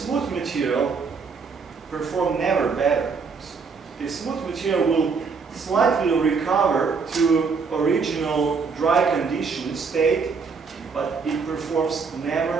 material perform never better. The smooth material will slightly recover to original dry condition state, but it performs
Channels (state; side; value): quieter; left; 5.1 dB